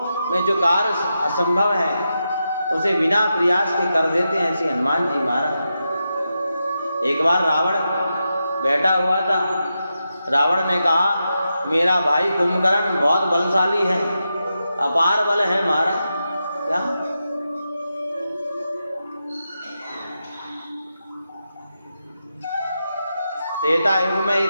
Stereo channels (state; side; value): inverted; both; correlation -0.88